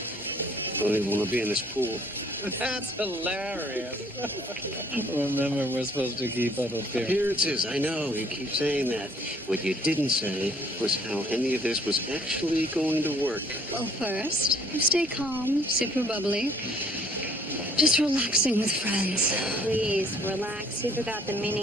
I don't even want to be in this pool. That's hilarious. Remember, we're supposed to keep up appearances. Appearances, I know. You keep saying that. What you didn't say was how any of this was actually going to work. Well, first, you stay calm, super bubbly. Just relaxing with friends. Please, relax. You forgot the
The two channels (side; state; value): both; normal; correlation 0.61